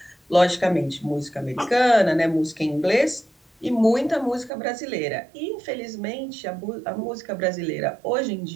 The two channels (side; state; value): left; drops out; at 4.5 s